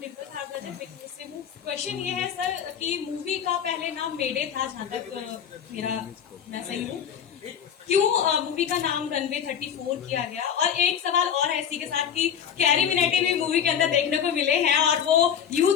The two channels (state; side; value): quieter; right; 8.3 dB